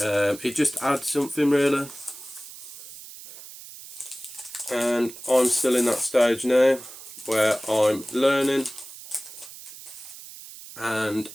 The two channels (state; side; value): noise; right; hiss, 15 dB below the sound